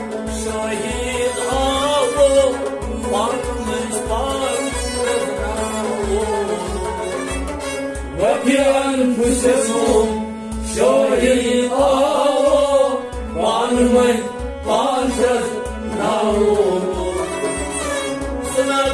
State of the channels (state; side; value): identical; both; correlation 1.00